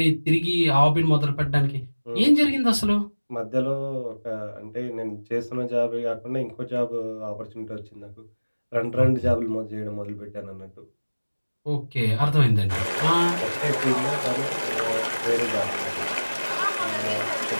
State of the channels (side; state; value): both; inverted; correlation -1.00